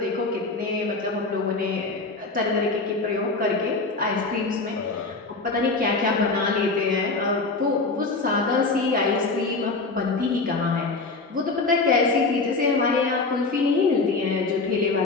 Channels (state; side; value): quieter; right; 3.7 dB